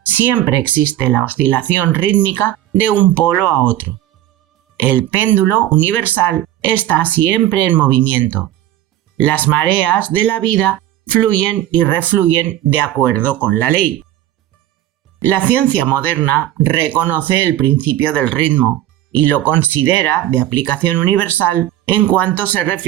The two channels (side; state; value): left; quieter; 13.2 dB